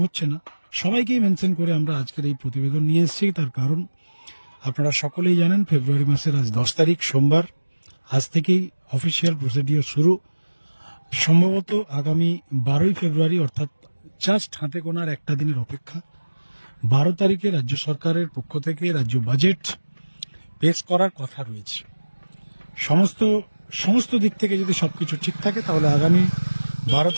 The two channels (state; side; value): inverted; both; correlation -1.00